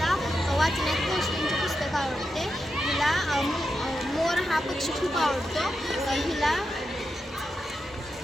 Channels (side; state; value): both; normal; correlation 0.88